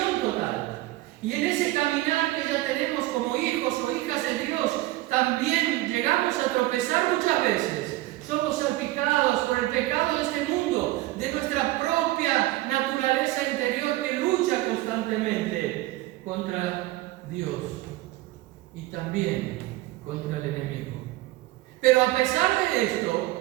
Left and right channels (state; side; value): quieter; left; 17.8 dB